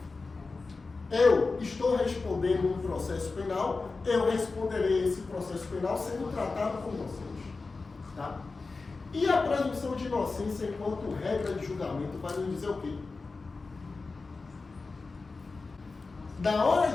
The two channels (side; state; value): right; quieter; 4.0 dB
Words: eu estou respondendo um processo penal, eu responderei esse processo penal sendo tratado como inocente. Tá? E a presunção de inocência enquanto regra de julgamento vai nos dizer o quê? Na hora